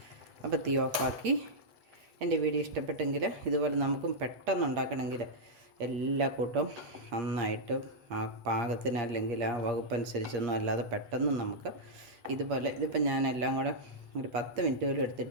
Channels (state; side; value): late; left; 8.5 ms